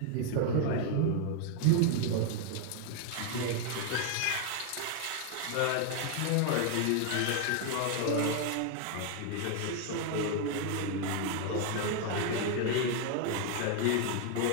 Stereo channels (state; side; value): different; both; correlation 0.00